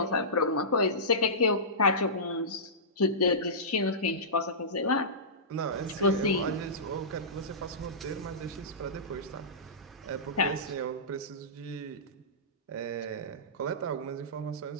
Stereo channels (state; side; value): normal; both; correlation -0.20